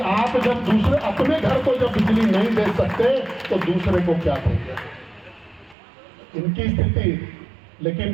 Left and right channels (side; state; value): left; drops out; at 5.8 s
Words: आप जब दूसरे अपने घर को जब बिजली नहीं दे सकते तो दूसरे को क्या देंगे, इनकी स्थिति। लेकिन